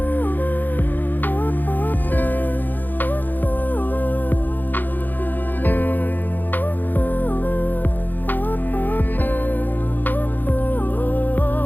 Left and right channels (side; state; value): right; late; 0.087 ms